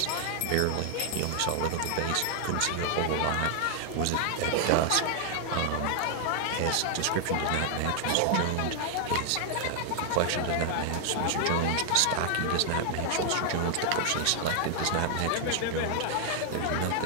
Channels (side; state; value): both; different; correlation 0.00